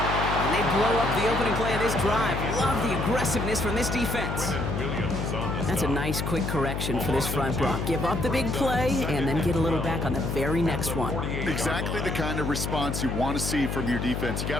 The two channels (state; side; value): noise; left; hum, 2 dB below the sound